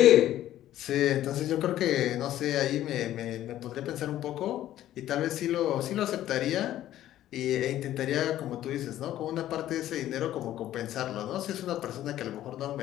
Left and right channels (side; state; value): right; quieter; 13.1 dB